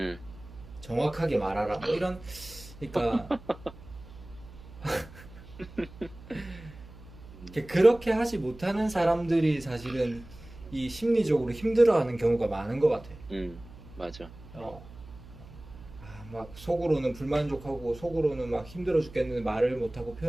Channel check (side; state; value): right; noise; hum, 18 dB below the sound